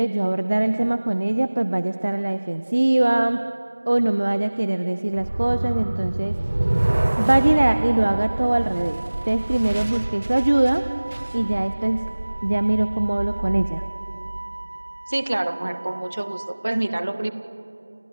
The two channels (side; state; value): both; inverted; correlation -1.00